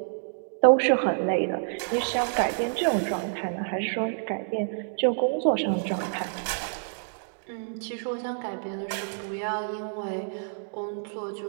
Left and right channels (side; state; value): left; silent; digital silence